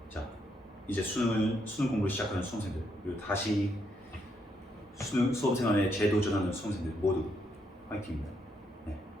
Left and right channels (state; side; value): normal; both; correlation 0.77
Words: 자, 이제 수능 공부를 시작하는 수험생들 그리고 다시 수능 수험생활에 재도전하는 수험생들 모두 화이팅입니다. 네.